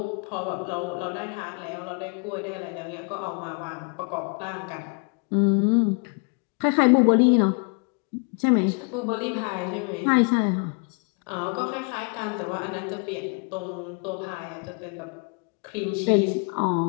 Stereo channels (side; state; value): right; quieter; 37.4 dB